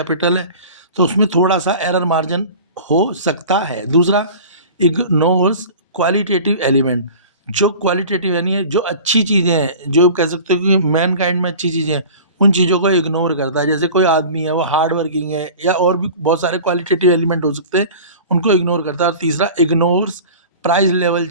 है। तो उसमें थोड़ा सा एरर मार्जिन हो सकता है। दूसरा, इग्नोर्स क्वालिटेटिव एलिमेंट। जो क्वालिटेटिव यानी जो अच्छी चीज़ें हैं, जो कह सकते हो कि मैन काइंड में अच्छी चीज़ें हैं, उन चीज़ों को इग्नोर करता है। जैसे कोई आदमी है वो हार्ड वर्किंग है, या और भी बहुत सारे क्वालिटेटिव एलिमेंट हो सकते हैं, उनको इग्नोर करता है। और तीसरा, ignores price level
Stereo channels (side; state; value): both; inverted; correlation -0.39